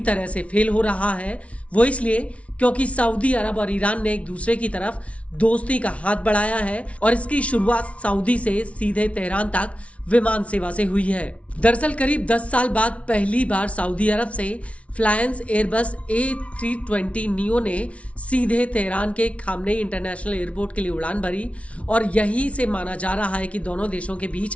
तरह से फेल हो रहा है। वो इसलिए क्योंकि सऊदी अरब और ईरान ने एक दूसरे की तरफ दोस्ती का हाथ बढ़ाया है, और इसकी शुरुआत सऊदी से सीधे तेहरान तक विमान सेवा से हुई है। दरअसल करीब 10 साल बाद पहली बार सऊदी अरब से फ्लायंस एयरबस A320 नियो ने सीधे तेहरान के खामनेई इंटरनेशनल एयरपोर्ट के लिए उड़ान भरी, और यहीं से माना जा रहा है कि दोनों देशों के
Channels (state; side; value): late; right; 0.063 ms